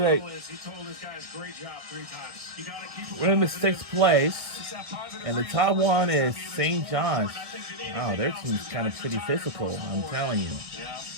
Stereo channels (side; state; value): left; late; 1.8 ms